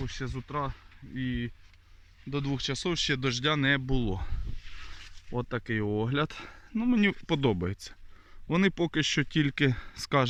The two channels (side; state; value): both; identical; correlation 1.00